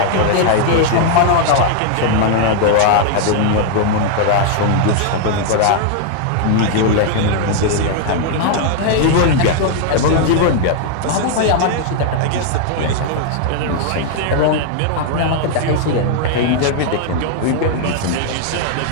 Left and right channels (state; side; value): different; both; correlation 0.00